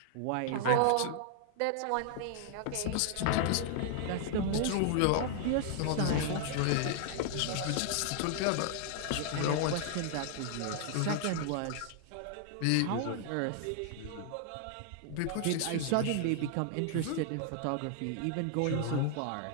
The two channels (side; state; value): both; different; correlation 0.00